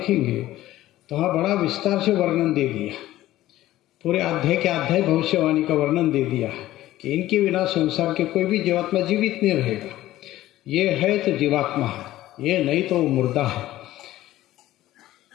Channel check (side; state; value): right; quieter; 15.1 dB